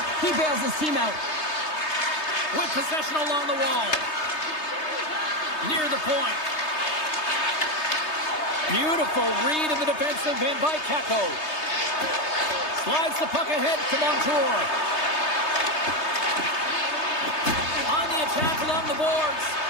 he bails his team out. With possession along the wall. Near the point. Beautiful read in the defensive end by Kako. Slides the puck ahead to Montour. On the attack along the boards.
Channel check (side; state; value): right; late; 3.3 ms